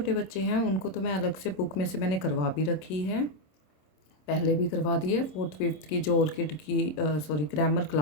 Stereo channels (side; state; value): right; late; 26 ms